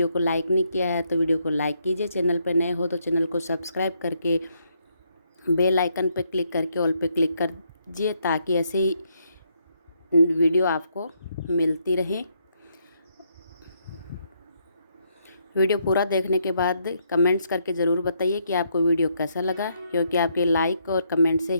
को लाइक नहीं किया है तो वीडियो को लाइक कीजिए। चैनल पर नए हो तो चैनल को सब्सक्राइब करके बेल आइकन पर क्लिक करके ऑल पे क्लिक कर दीजिए, ताकि ऐसे ही वीडियो आपको मिलती रहे। वीडियो पूरा देखने के बाद कमेंट्स करके ज़रूर बताइए कि आपको वीडियो कैसा लगा, क्योंकि आपके लाइक और कमेंट से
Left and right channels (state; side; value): inverted; both; correlation -0.75